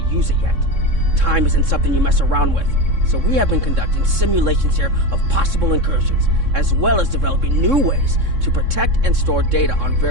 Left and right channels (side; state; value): left; late; 3.6 ms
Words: use it yet. Time isn't something you mess around with, so we have been conducting simulations here of possible incursions, as well as developing new ways to protect and store data on